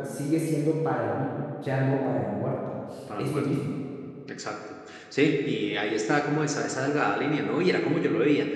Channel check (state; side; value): identical; both; correlation 1.00